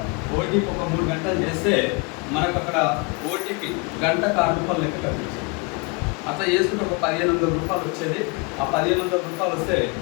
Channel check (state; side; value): quieter; right; 29.7 dB